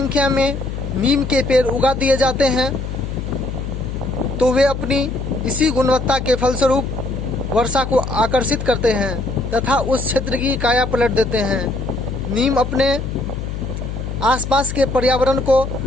में नीम के पेड़ उगा दिए जाते हैं तो वे अपनी इसी गुणवत्ता के फलस्वरूप वर्षा को आकर्षित करते हैं तथा उस क्षेत्र की काया पलट देते हैं। नीम अपने आसपास के पर्यावरण को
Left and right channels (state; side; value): noise; left; hum, 6 dB below the sound